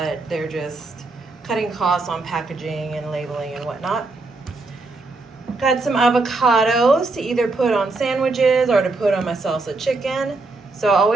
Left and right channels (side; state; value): left; quieter; 3.4 dB